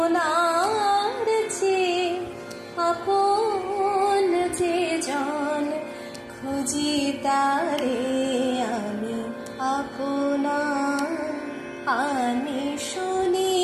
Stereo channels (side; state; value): both; identical; correlation 1.00